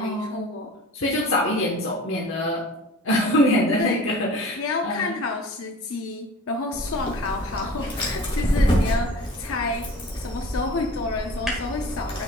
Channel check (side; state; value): both; normal; correlation 0.42